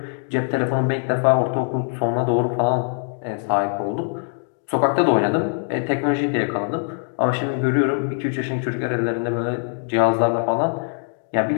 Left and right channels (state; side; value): silent; right; 60 dB below the other